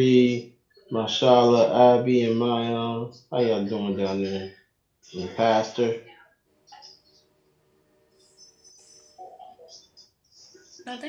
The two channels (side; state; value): both; identical; correlation 1.00